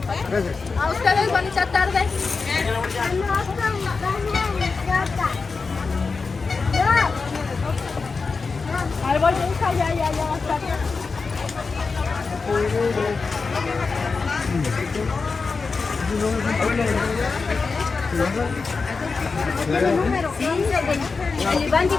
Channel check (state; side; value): quieter; right; 4.5 dB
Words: A ustedes, bonita tarde. Ahí voy, hija, ya va a estar. Sí, el Iván